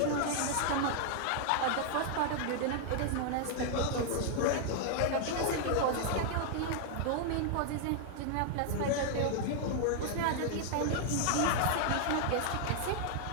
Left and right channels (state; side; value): different; both; correlation 0.00